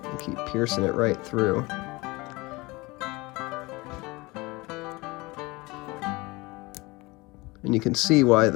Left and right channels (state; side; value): quieter; right; 23.3 dB